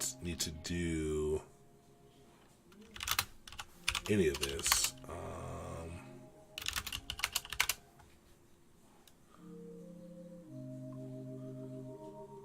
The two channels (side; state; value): both; identical; correlation 1.00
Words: need to do any of this.